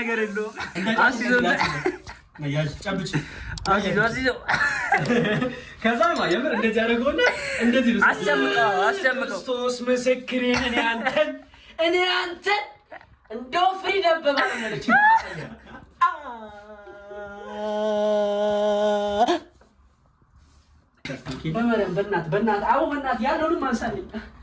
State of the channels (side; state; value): both; identical; correlation 1.00